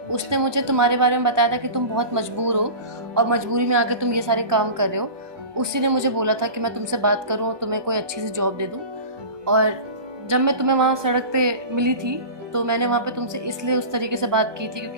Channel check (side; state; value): left; late; 1.2 ms